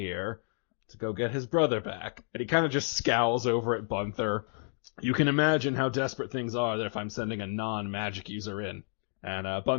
to go get his brother back. And he kind of just scowls over at Gunther. You can imagine how desperate things are if I'm sending a non-magic user in. And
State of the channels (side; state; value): right; silent; 57 dB below the other